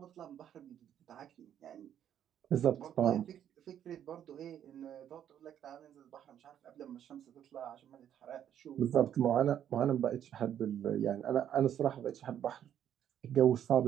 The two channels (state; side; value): quieter; left; 10.0 dB